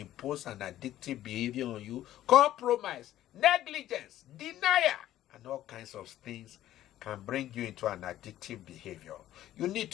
an addictive behavior on you. Compromise, negligence, denial, and all kinds of things can bring you into an addictive behavior. You need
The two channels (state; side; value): quieter; right; 13.2 dB